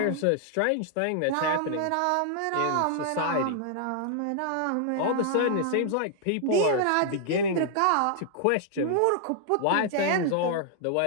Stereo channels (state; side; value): different; both; correlation -0.01